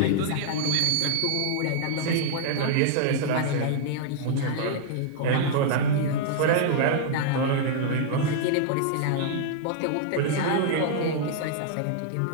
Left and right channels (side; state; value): both; different; correlation -0.01